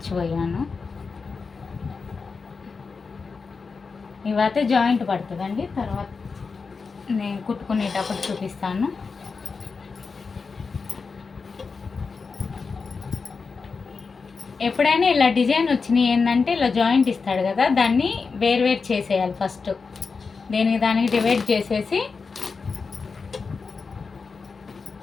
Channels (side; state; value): right; quieter; 4.8 dB